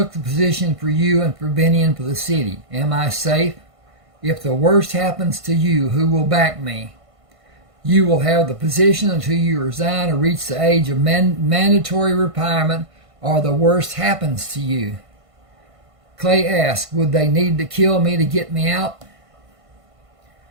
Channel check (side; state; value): left; late; 1.5 ms